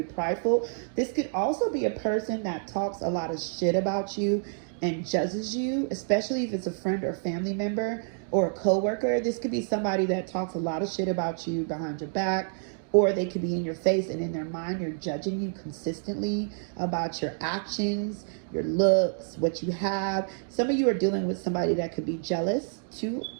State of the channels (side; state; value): left; silent; digital silence